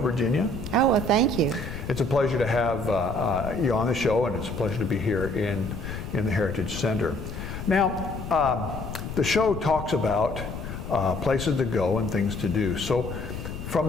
Oh, well, thank you. It's a pleasure to have you on the show, and it's a pleasure to be here in the Heritage Center. Now, the show talks about places to go and things to do. So,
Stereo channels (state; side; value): noise; left; rumble, 8 dB below the sound